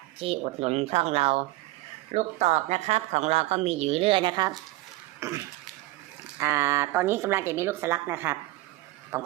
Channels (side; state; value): left; quieter; 18.9 dB